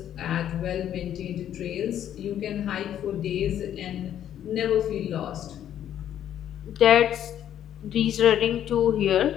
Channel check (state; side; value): quieter; right; 10.6 dB